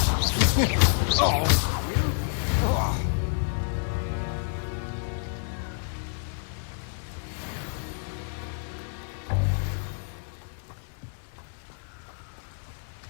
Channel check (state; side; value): silent; right; digital silence